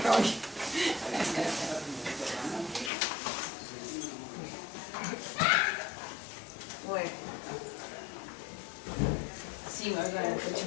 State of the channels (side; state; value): right; drops out; at 2.9 s